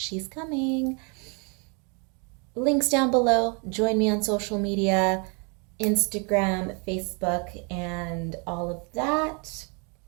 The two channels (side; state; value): left; quieter; 34.6 dB